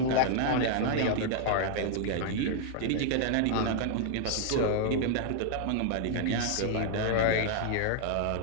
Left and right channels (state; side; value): different; both; correlation 0.00